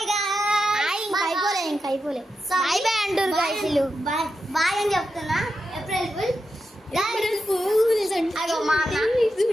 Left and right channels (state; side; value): normal; both; correlation 0.88